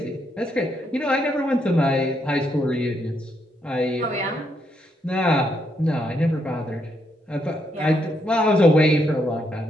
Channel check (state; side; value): normal; both; correlation 0.77